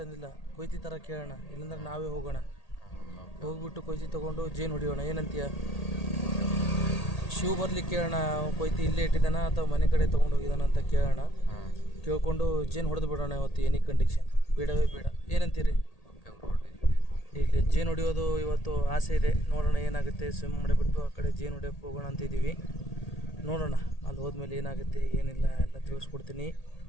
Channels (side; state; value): right; late; 1.8 ms